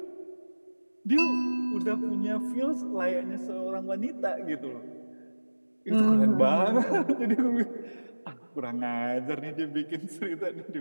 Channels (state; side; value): inverted; both; correlation -1.00